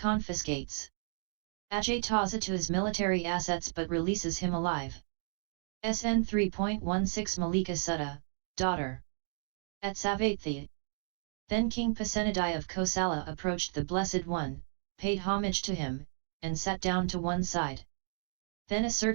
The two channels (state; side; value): silent; left; digital silence